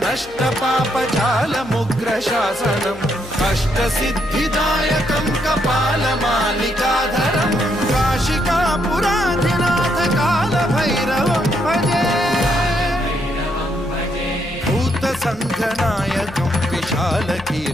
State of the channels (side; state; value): left; noise; hum, 22 dB below the sound